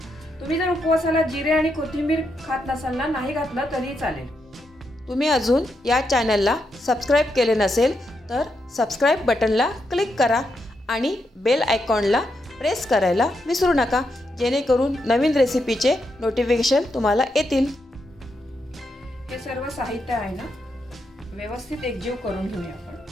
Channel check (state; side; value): normal; both; correlation 0.82